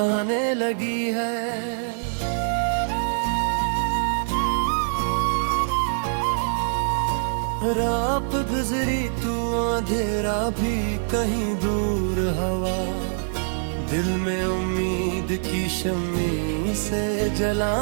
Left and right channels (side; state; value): left; silent; digital silence